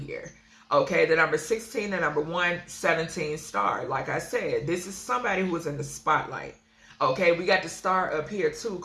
Okay, the number 16, the number 117 star. Like I said, this is somebody who is in the spotlight. Okay, we got the star up here too,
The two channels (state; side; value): identical; both; correlation 1.00